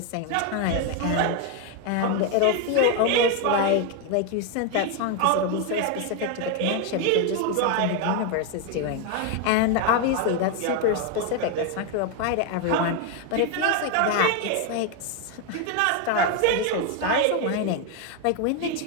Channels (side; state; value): both; different; correlation 0.01